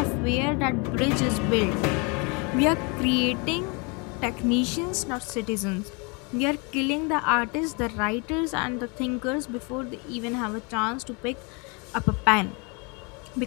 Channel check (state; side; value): quieter; right; 31.6 dB